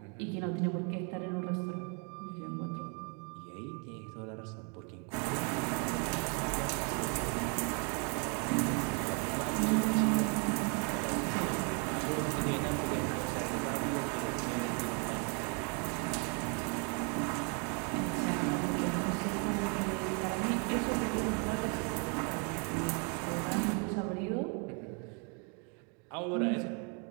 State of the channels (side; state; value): left; quieter; 36.6 dB